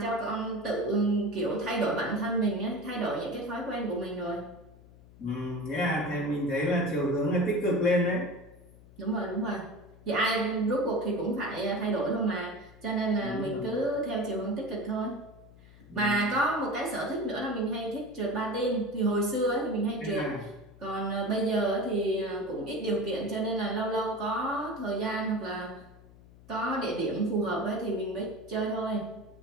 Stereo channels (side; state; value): left; noise; hum, 22 dB below the sound